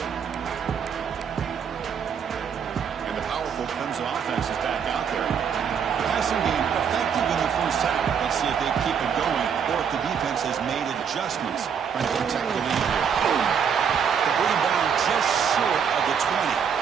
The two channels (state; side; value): quieter; left; 7.2 dB